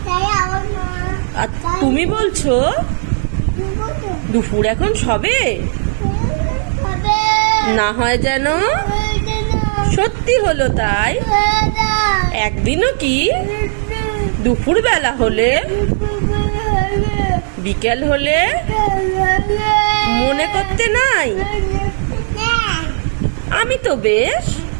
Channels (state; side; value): silent; left; 69 dB below the other